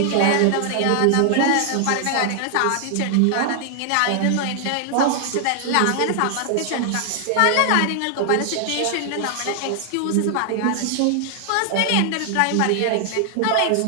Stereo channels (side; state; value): both; different; correlation 0.00